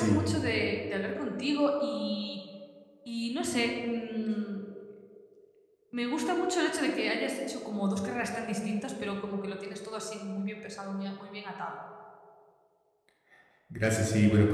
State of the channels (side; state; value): both; identical; correlation 1.00